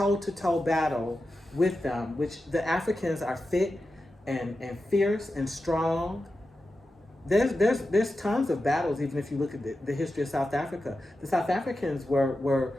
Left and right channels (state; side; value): normal; both; correlation 0.91